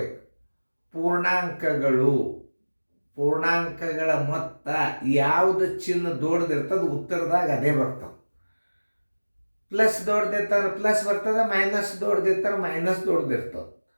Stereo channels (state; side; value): inverted; both; correlation -1.00